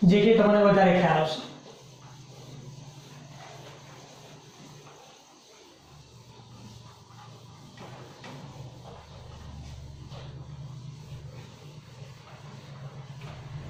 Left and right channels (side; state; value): both; identical; correlation 1.00